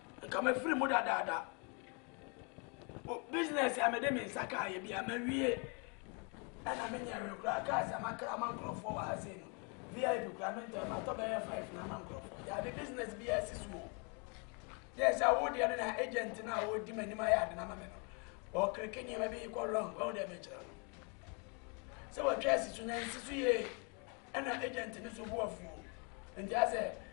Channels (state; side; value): quieter; right; 35.1 dB